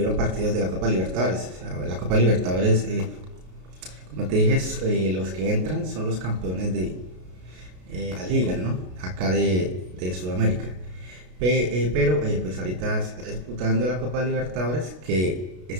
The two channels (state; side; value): late; left; 33 ms